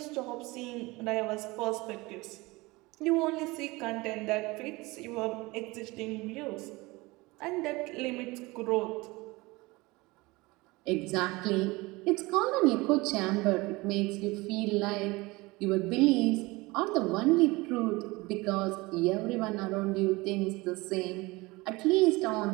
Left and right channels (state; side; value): quieter; left; 22.7 dB